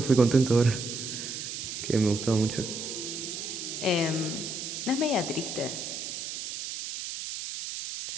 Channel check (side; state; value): right; noise; hiss, 6 dB below the sound